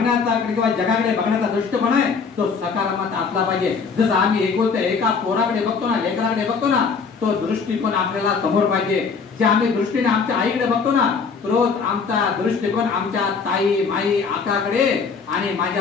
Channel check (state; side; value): quieter; right; 5.3 dB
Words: किंवा जगाकडे बघण्याचा दृष्टिकोन आहे तो सकारात्मक असला पाहिजे. जसं आम्ही एका पोराकडे बघतो ना, लेकराकडे बघतो ना, तो दृष्टिकोन आपल्याला समोर पाहिजे. जे आम्ही दृष्टीने आमच्या आईकडे बघतो ना, रोज आमचा दृष्टिकोन आमच्या ताई माई आकाकडे आणि